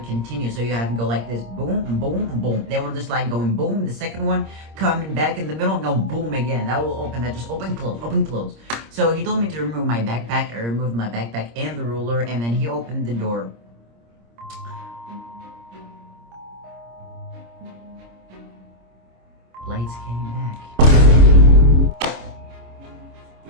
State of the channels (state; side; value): late; left; 26 ms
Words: So you have to go like this, boom, boom, boom. They were just like going boom. The second one coming back in the middle, go boom again. That will open. That just open, close. So he told me to remove my backpack. I removed my backpack and the ruler, and then he opened the door. Lights came back.